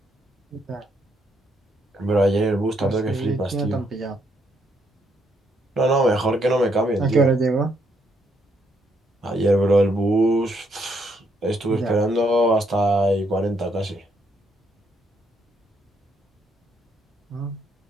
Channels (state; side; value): normal; both; correlation 0.73